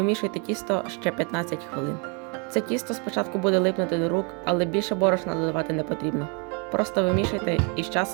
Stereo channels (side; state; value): left; quieter; 34.8 dB